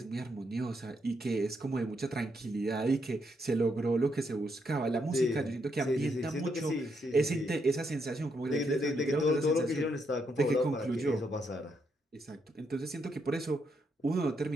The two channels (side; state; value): both; normal; correlation 0.78